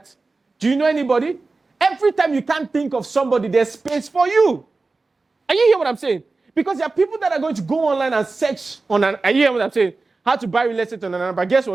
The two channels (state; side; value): quieter; left; 3.7 dB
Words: Do you know anybody? Every time you can't think of somebody, there's space for you. Are you hearing what I'm saying? Because there are people that are going to go online and search on are you hearing what I'm saying? How to buy real estate on Anambra. Guess